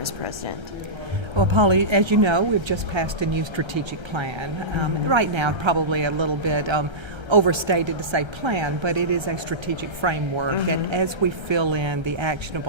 as president? Well, Polly, as you know, we've just passed a new strategic plan. Right now, probably a little bit overstated to say plan, but it is a strategic framework that as we fill in the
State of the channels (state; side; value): late; left; 1.3 ms